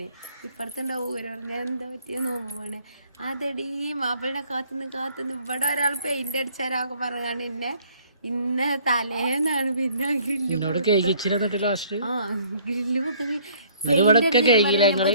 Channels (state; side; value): inverted; both; correlation -0.59